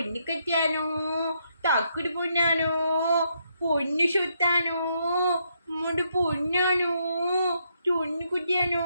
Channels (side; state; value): both; inverted; correlation -0.76